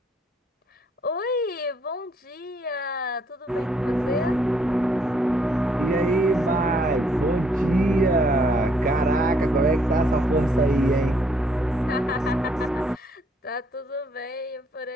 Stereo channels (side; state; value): both; normal; correlation 0.68